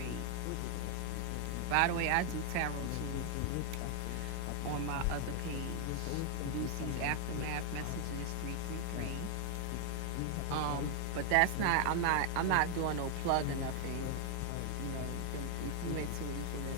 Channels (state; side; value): different; both; correlation 0.00